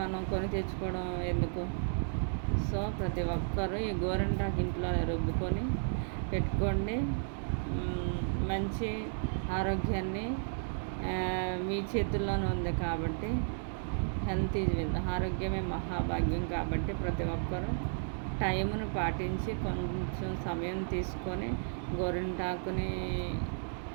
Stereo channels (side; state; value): left; silent; digital silence